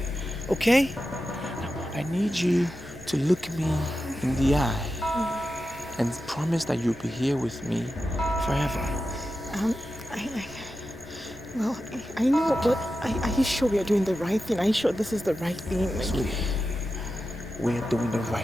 Okay? Now, I need you to look me in the eye and promise that you'll be here with me forever. I know, but are you sure we are doing the right thing? Are you sure this is the right thing? Sweetie, we are doing the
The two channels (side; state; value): both; normal; correlation 0.91